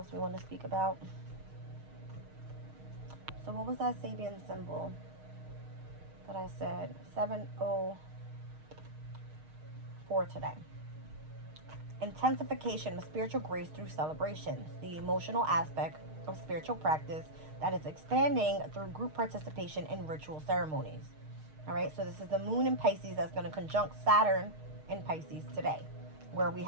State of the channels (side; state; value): left; late; 6.5 ms